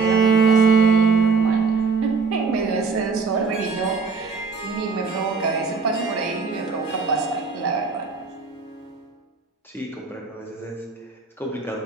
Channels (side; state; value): left; quieter; 4.7 dB